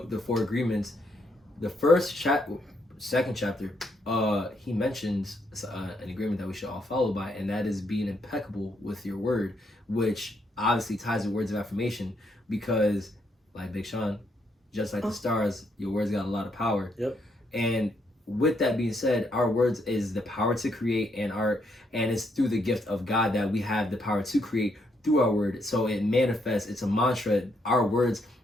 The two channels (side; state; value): both; normal; correlation 0.75